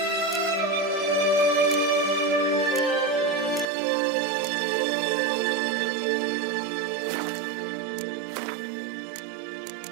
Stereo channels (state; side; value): drops out; left; at 3.7 s